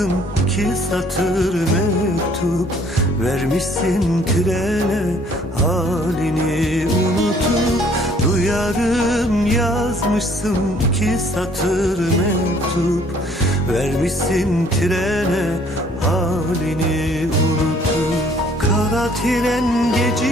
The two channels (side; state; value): both; normal; correlation 0.59